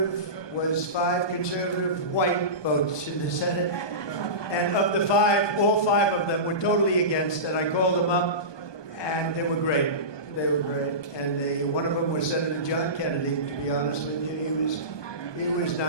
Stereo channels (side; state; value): right; late; 1.2 ms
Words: was 5 conservative white votes in the Senate. And of the 5, all 5 of them were totally against, and I called them up, and they were great. They were great. And one of them was Senator John Kennedy, to be honest with you. He was